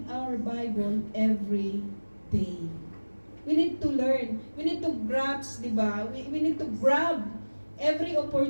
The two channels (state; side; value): inverted; both; correlation -1.00